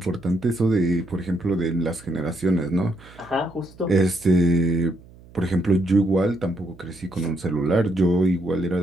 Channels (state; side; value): noise; right; hum, 23 dB below the sound